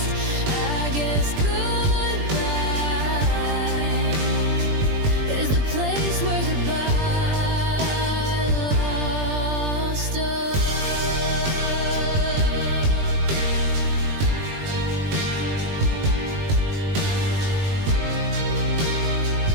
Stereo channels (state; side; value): late; left; 20 ms